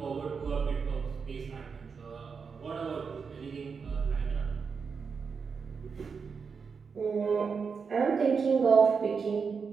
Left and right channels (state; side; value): quieter; left; 5.6 dB